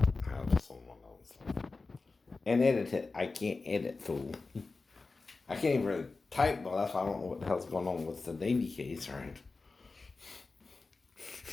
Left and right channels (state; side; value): quieter; right; 3.9 dB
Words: Have someone else. And edit it. I can't edit, fool. I can't even really type, but that's why I don't know what the hell's going on with the Navy case, right?